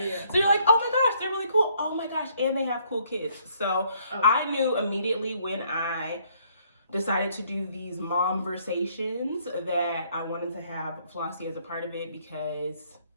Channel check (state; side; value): inverted; both; correlation -0.66